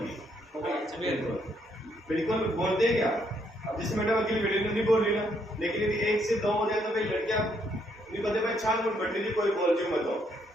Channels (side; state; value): both; normal; correlation 0.72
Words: बिल्कुल बोल दे क्या? अब जिस मैडम अकेली बेटे नहीं बोल रही ना, लेकिन यदि एक से दो हो जाए तो फिर लड़कियां नहीं बोलते भाई छान मुझ बैठ लीजिए, कोई बोल जो मत हो।